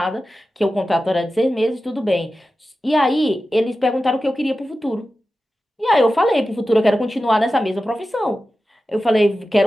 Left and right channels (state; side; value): normal; both; correlation 0.93